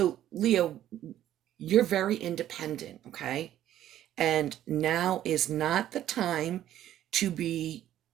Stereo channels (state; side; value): quieter; left; 12.1 dB